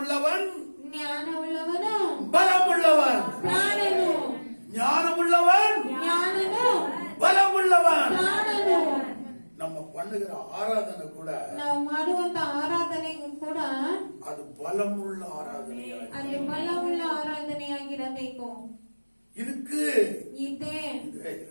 ಜ್ಞಾನವುಳ್ಳವನು பலமுள்ளவன். ಪ್ರಾಣನು. ஞானமுள்ளவன் ಜ್ಞಾನನು பலமுள்ளவன். பண்ணுகிற ஆராதனை கூட ನಾವು ಮಾಡುವಂತ ಆರಾಧನೆಗೂ ಕೂಡ அது பலமுள்ள ஆராதனையா ಅದು ಬಲವುಳ್ಳ ಆರಾಧನೆಯಾಗಿರಬೇಕು. இருக்கு. ಇದೆ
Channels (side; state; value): both; inverted; correlation -1.00